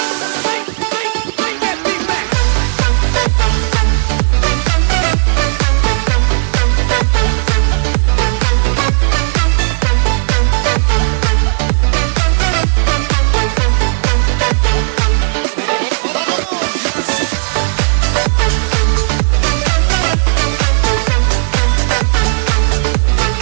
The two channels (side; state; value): left; silent; 66 dB below the other